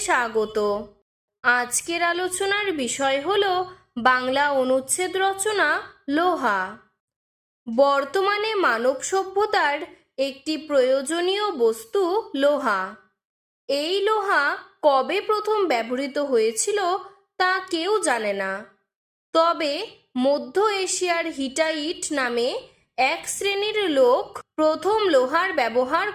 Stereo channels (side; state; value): both; identical; correlation 1.00